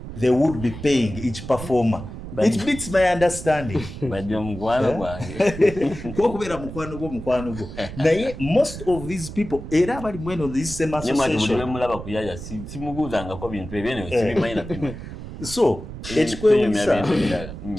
they would be paying each performer. It beats my understanding. Most of these people, this same association. So,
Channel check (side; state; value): right; noise; rumble, 11 dB below the sound